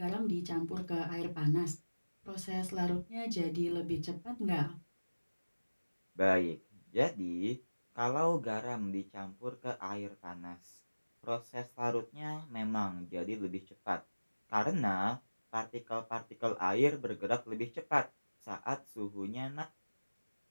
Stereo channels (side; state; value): both; inverted; correlation -1.00